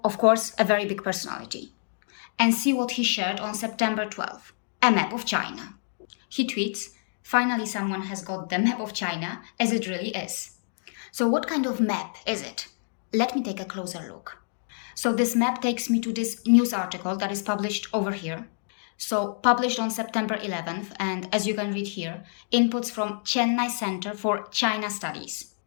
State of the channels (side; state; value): right; silent; digital silence